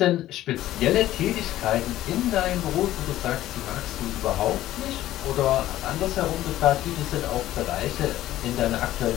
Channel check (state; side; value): quieter; right; 14.3 dB